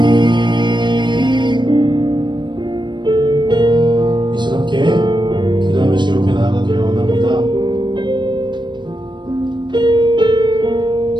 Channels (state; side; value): late; left; 0.22 ms